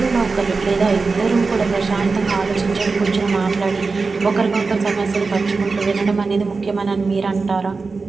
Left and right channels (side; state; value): left; quieter; 4.2 dB